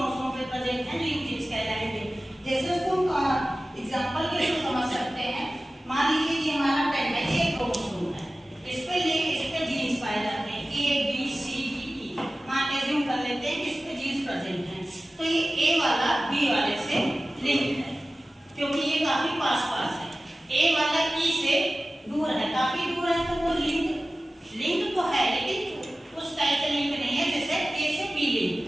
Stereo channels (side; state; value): both; normal; correlation 0.96